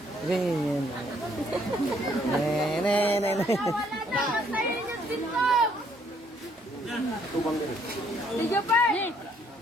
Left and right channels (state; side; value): normal; both; correlation 0.66